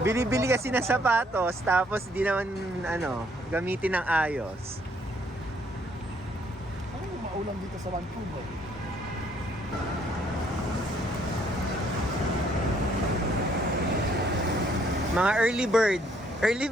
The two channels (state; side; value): normal; both; correlation 0.67